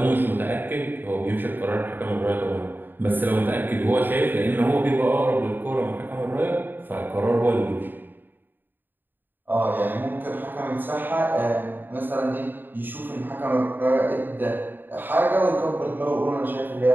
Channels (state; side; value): late; left; 0.093 ms